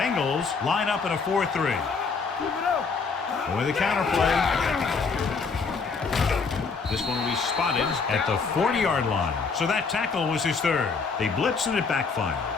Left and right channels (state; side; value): quieter; right; 4.9 dB